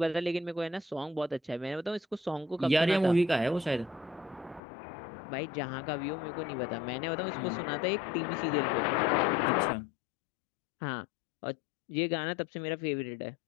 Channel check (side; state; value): right; drops out; at 4.6 s